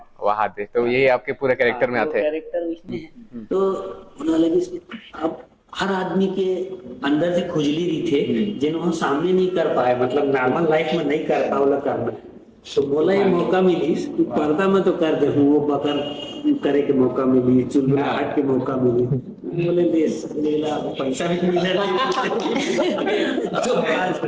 वहां थे, तो ये आपके पूरे कैरेक्टर में आते हैं। कैरेक्टर उसमें है तो उन्होंने लगी अब हर आदमी के अंदर से खुजली रही थे जिन्होंने सामने नहीं कर पाए, मतलब नॉर्मल लाइफ में नहीं कर पाओ करना, तो बोला ये मौका मिली कि पर्दा में तो कर दे हूँ, वो बकर करे के मौका मिली, चुनहाट के मौका मिली, बोले लेला पैसा भी मिला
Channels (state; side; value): identical; both; correlation 1.00